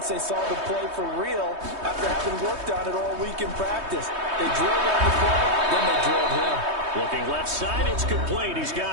they saw the play for real after having worked on it all week in practice. They drilled on the play, then they drilled him. Looking left side, it's complete. He's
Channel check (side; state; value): left; late; 3.2 ms